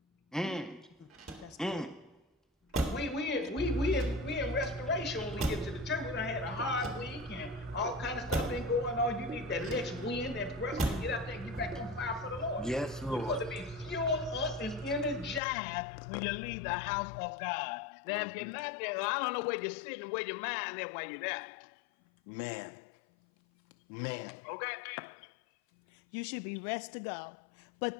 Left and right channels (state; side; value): drops out; right; at 15.4 s